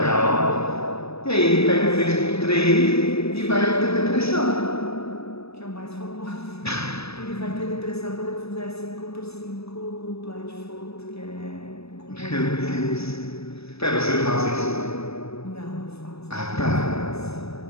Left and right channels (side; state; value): right; late; 0.78 ms